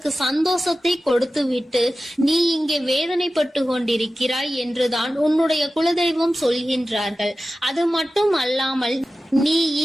சந்தோஷத்தை கொடுத்துவிட்டு நீ இங்கே வேதனைப்பட்டு கொண்டிருக்கிறாய் என்றுதான் உன்னுடைய குலதெய்வம் சொல்கின்றார்கள். அது மட்டும் அல்லாமல் நீ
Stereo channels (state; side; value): normal; both; correlation 0.95